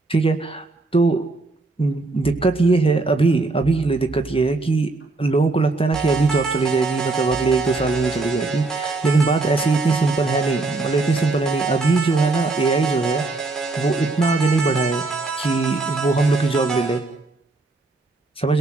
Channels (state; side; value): quieter; left; 3.3 dB